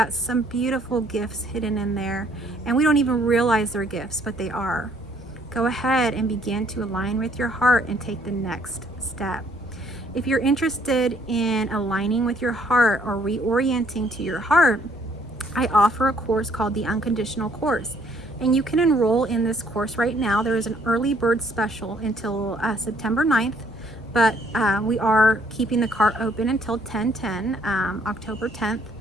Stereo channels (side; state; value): both; normal; correlation 0.65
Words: some beautiful gifts hidden in there, and we don't even realize they're gifts, but they are. Go ahead and begin to align with your heart and take the next step. If you're interested in aligning with your heart or reorienting to your heart, I offer a course called the Unconditional Course. And you can enroll in this course right now. There is an early bird special until September 9th, but we are keeping the cart open until 10/10, October 10th.